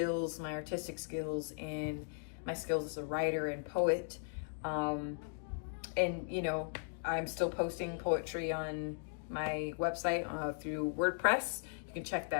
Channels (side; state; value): right; silent; digital silence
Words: my artistic skills, and my skills as a writer and poet. And you know, I'm still posting poetry on my website through WordPress. You can check